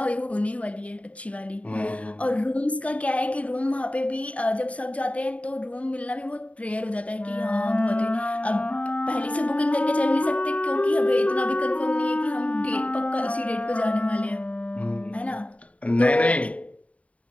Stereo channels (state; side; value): late; right; 0.066 ms